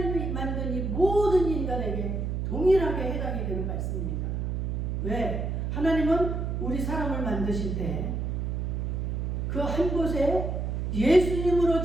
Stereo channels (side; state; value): right; noise; hum, 1 dB below the sound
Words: 만든 이 모든 인간에게 동일하게 해당이 되는 말씀입니다. 왜? 하나님은 우리 사람을 만드실 때 그 한 곳에 예수님으로